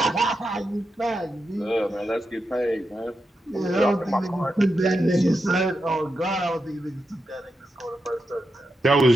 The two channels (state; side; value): normal; both; correlation 0.87